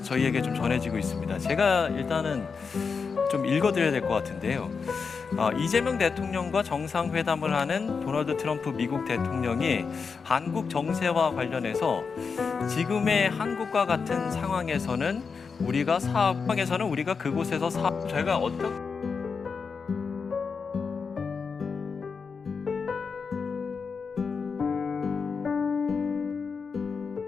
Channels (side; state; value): right; quieter; 5.4 dB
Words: 저희에게 좀 전해지고 있습니다. 제가 일단은 좀 읽어드려야 될 것 같은데요. 이재명 대통령과 정상회담을 하는 도널드 트럼프 미국 대통령이 한국 정세와 관련해서 지금의 한국과 같은 상황에서는 우리가 그곳에서 저희가 어떻게